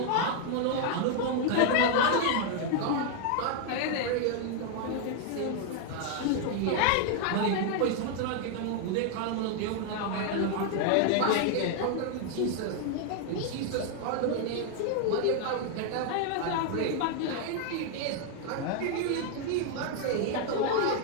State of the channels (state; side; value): different; both; correlation 0.00